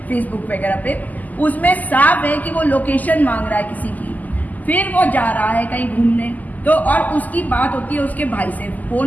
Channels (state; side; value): late; right; 0.080 ms